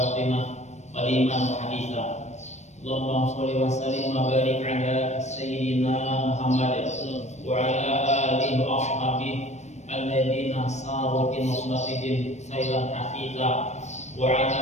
qadiman wa haditha. Allahumma shalli wa sallim wa barik ala sayyidina Muhammad wa ala alihi wa ashabihi alladhina saru bi nusratihim sayran hafidha wa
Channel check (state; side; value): late; right; 0.33 ms